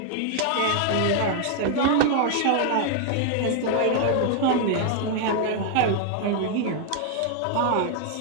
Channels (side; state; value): both; different; correlation 0.00